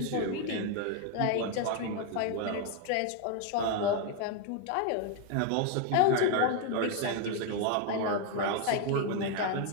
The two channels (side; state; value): both; different; correlation 0.01